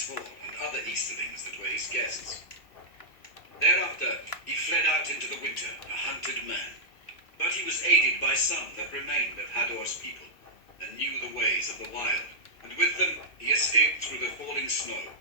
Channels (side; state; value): right; late; 2.7 ms